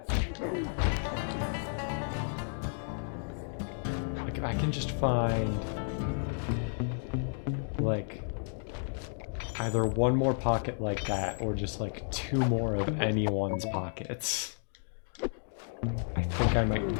Like, if I can just find, like, Either one more pocket like that, or just like 2 more of anyone's pockets. I think I might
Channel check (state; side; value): silent; right; digital silence